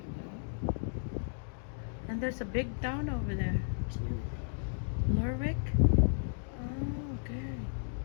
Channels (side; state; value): right; silent; digital silence